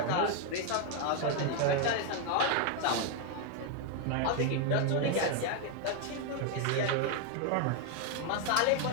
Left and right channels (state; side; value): different; both; correlation 0.01